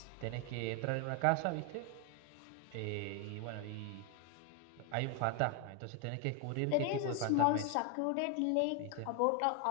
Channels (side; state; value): both; different; correlation 0.01